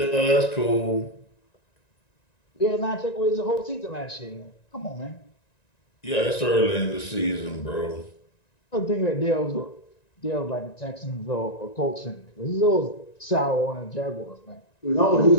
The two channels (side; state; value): right; late; 1.9 ms